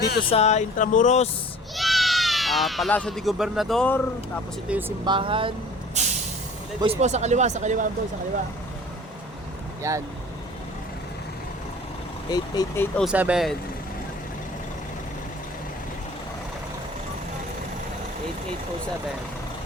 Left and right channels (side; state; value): both; normal; correlation 0.47